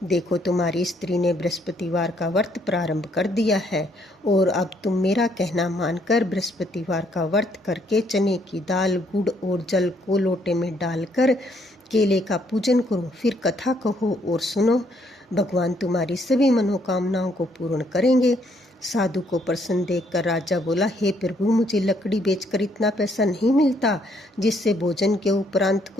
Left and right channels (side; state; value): both; normal; correlation 0.69